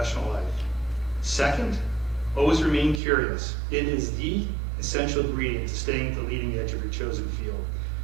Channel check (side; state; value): left; drops out; at 3.0 s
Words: life. Second, always remain curious. It is the essential ingredient to staying at the leading edge of your chosen field.